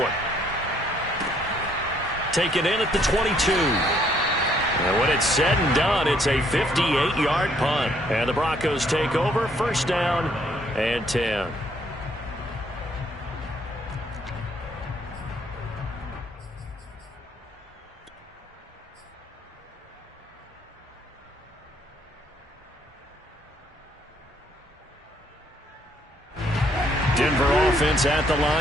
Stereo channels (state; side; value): normal; both; correlation 0.67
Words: Taken in at the 22. And when it's said and done, it's a 58-yard punt. And the Broncos take over, 1st down and 10. Denver offense at the